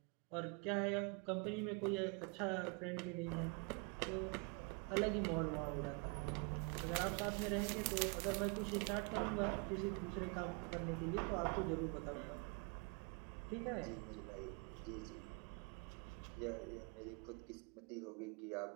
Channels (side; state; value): left; quieter; 31.2 dB